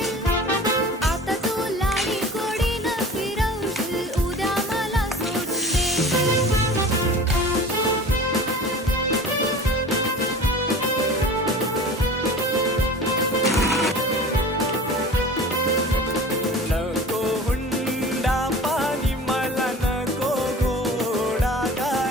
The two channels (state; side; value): normal; both; correlation 0.39